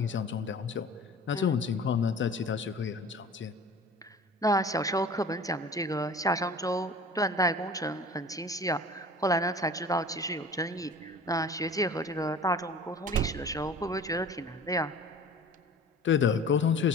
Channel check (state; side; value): normal; both; correlation 0.42